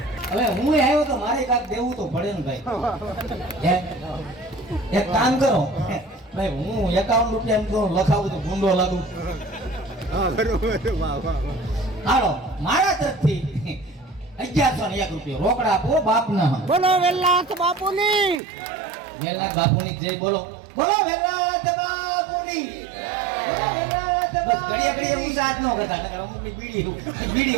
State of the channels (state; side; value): drops out; left; at 18.4 s